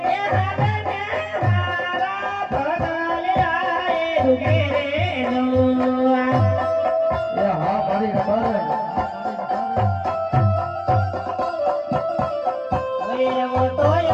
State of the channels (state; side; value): identical; both; correlation 1.00